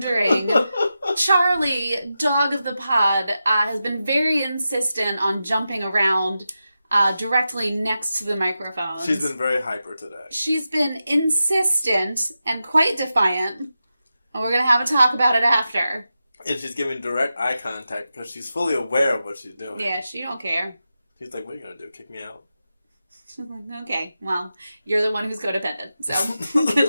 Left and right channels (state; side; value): inverted; both; correlation -0.90